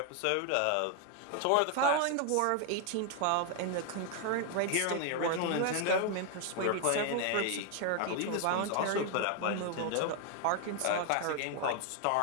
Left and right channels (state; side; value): different; both; correlation 0.00